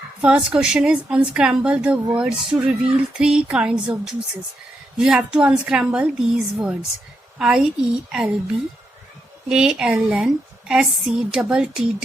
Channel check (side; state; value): both; normal; correlation 0.82